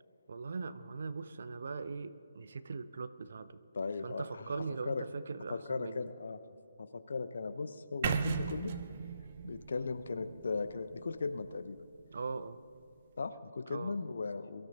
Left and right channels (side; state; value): both; inverted; correlation -0.82